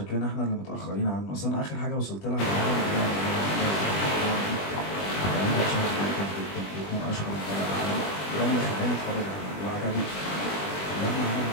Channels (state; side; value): late; right; 20 ms